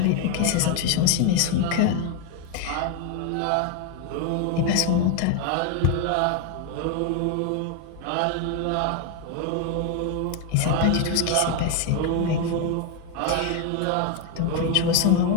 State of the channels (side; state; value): both; different; correlation 0.01